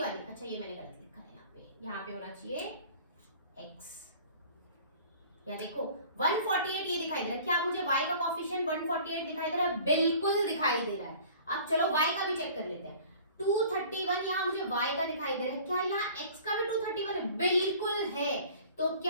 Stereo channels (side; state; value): both; inverted; correlation -0.47